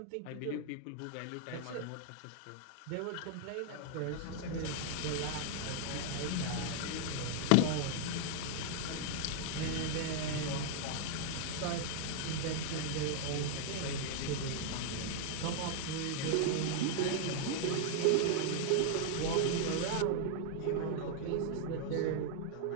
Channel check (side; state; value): both; different; correlation 0.00